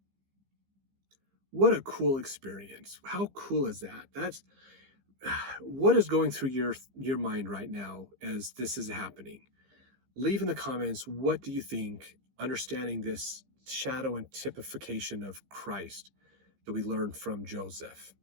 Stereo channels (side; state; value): left; late; 15 ms